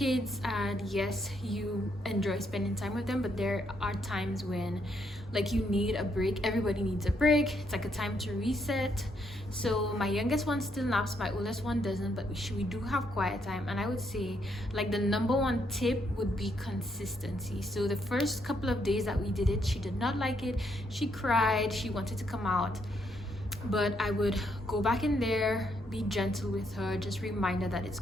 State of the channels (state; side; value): normal; both; correlation 0.75